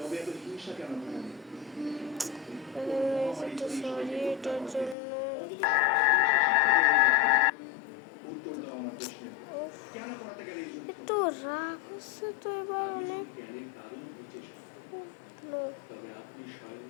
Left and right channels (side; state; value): right; drops out; at 5.0 s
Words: সরি এটার জন্য। একটু রাগ হচ্ছে তো এবার অনেক।